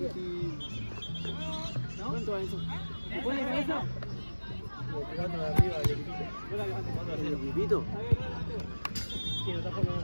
¿No? ¿Cuánto va eso? ¿Se puede de cabeza? Jugando de arriba al equipito. Yo la levanto cuando ¿El equipito? Sí, no está formando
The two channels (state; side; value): inverted; both; correlation -1.00